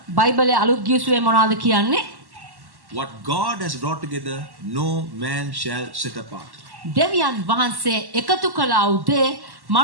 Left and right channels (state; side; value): late; left; 1.1 ms